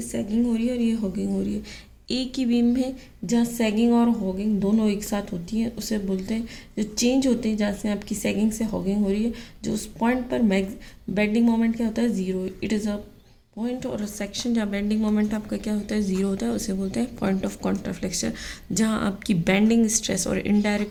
सैगिंग हो रही है और ये हॉगिंग हो रही है। एक ही बीम है जहाँ सैगिंग और हॉगिंग दोनों एक साथ होती हैं, उसे बोलते हैं, जो चेंज होते हैं जहाँ से आपकी सैगिंग से हॉगिंग हो रही है, जो उस पॉइंट पर बेंडिंग मोमेंट क्या होता है, zero. It is a point और सेक्शन जहाँ बेंडिंग मोमेंट आपका क्या होता है, ज़ीरो होता है, उसे बोलते हैं पॉइंट ऑफ कॉन्ट्राफ्लेक्शन। जहाँ आपकी बेंडिंग स्ट्रेस और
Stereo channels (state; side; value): identical; both; correlation 1.00